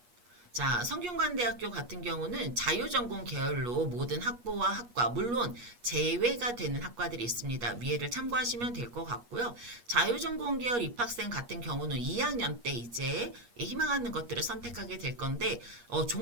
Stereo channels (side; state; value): left; late; 8.4 ms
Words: 자, 성균관대학교 같은 경우는 자유전공 계열로 모든 학부와 학과, 물론 제외가 되는 학과들이 있습니다. 위에를 참고하시면 될 것 같고요. 자유전공 계열 입학생 같은 경우는 2학년 때 이제 희망하는 것들을 선택하게 될 건데